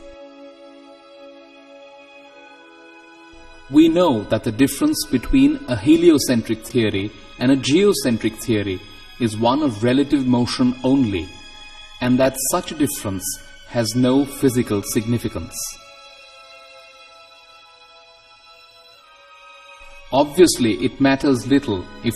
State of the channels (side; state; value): both; identical; correlation 1.00